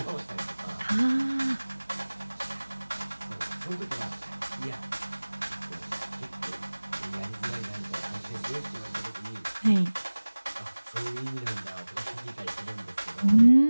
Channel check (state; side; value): inverted; both; correlation -1.00